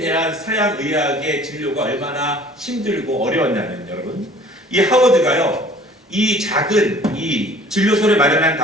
서양 의학의 진료가 얼마나 힘들고 어려웠냐면, 여러분, 이 하워드가요 이 작은 이 진료소를 마련한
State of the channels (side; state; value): both; normal; correlation 0.51